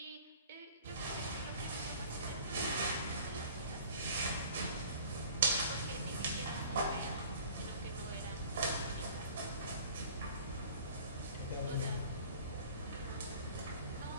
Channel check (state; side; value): inverted; both; correlation -0.47